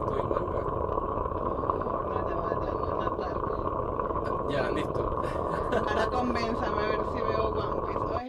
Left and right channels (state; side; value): identical; both; correlation 1.00